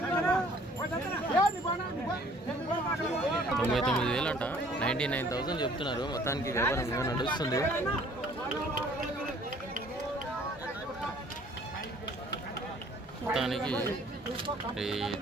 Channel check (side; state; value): both; normal; correlation 0.56